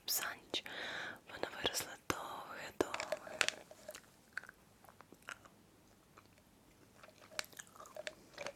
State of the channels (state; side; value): identical; both; correlation 1.00